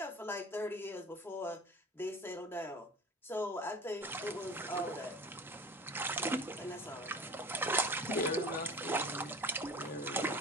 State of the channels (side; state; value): both; normal; correlation 0.39